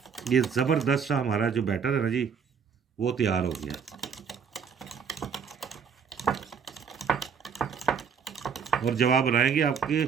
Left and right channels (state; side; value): quieter; left; 6.6 dB